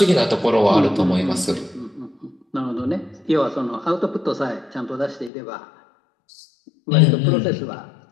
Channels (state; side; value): drops out; right; at 5.3 s